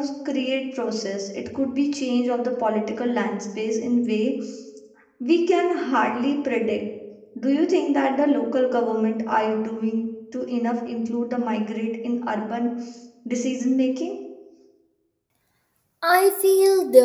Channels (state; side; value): identical; both; correlation 1.00